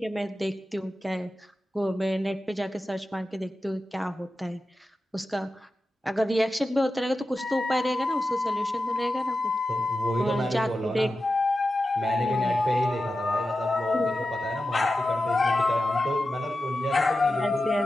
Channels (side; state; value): both; normal; correlation 0.92